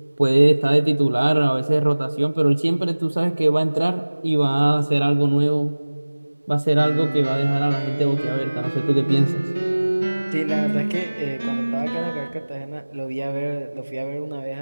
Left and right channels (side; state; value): both; inverted; correlation -1.00